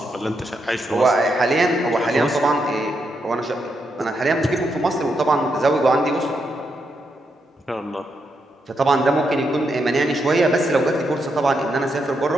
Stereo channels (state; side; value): normal; both; correlation 0.81